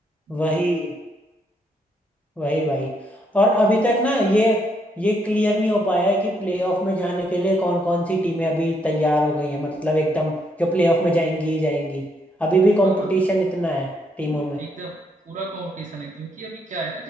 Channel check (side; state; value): both; normal; correlation 0.74